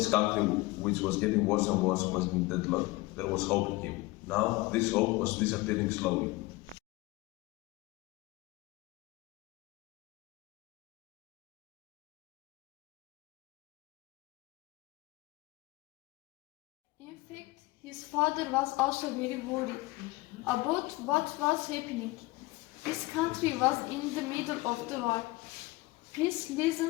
country, which was getting worse and worse, was in deadlock, there was hope in him. Now, this hope was disappearing slowly. In fact, his father was also very worried about what was happening. His country was in the middle of the war. Peace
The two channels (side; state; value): right; quieter; 21.4 dB